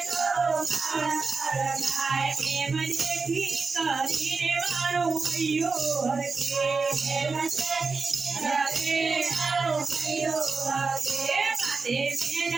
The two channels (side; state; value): left; quieter; 4.5 dB